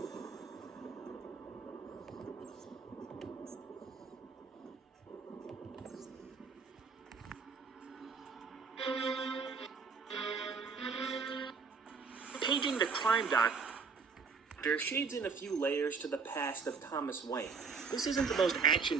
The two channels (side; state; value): left; quieter; 5.2 dB